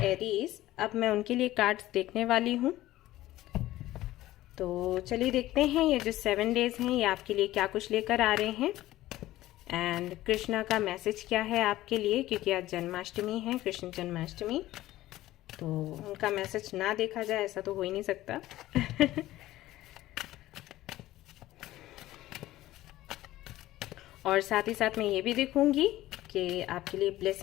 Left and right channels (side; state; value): right; quieter; 15.7 dB